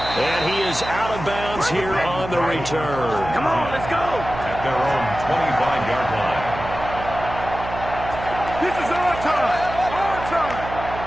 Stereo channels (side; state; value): right; noise; hum, 9 dB below the sound